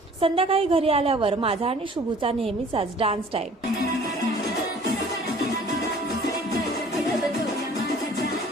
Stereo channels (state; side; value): normal; both; correlation 0.51